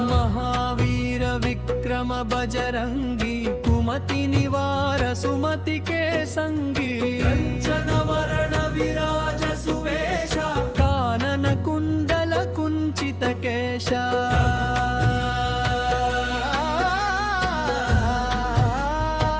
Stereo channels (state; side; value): identical; both; correlation 1.00